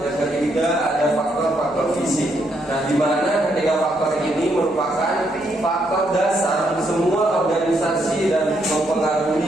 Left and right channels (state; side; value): normal; both; correlation 0.76